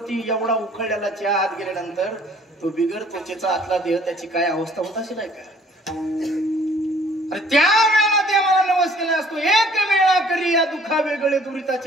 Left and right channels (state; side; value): normal; both; correlation 0.57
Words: एवढा उकळलेला चहा आत गेल्यानंतर तो बिगर त्वचेचा आतला देह त्याची काय अवस्था होत असेल का. त्या वेळेला देवाला नवस केला असतो, एक वेळा करी या दुखा वेगळे